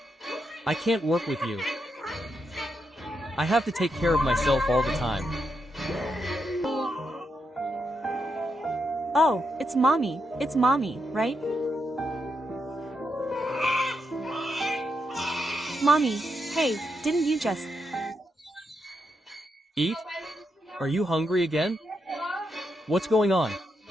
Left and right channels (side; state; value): both; normal; correlation 0.83